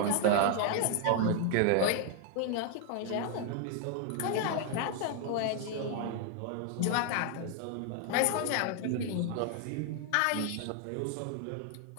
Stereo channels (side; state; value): both; different; correlation 0.00